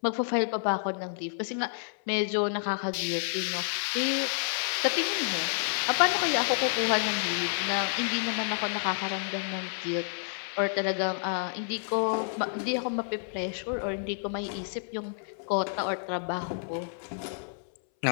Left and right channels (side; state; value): right; silent; 58 dB below the other